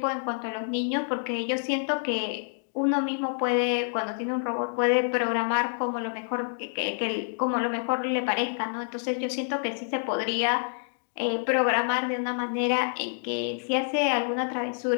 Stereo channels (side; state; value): right; silent; digital silence